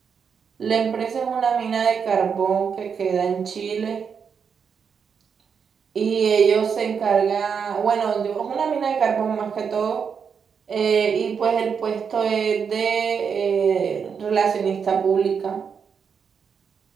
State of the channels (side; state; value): left; quieter; 6.5 dB